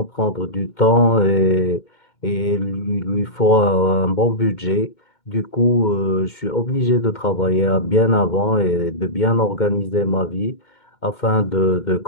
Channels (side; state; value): right; late; 2.2 ms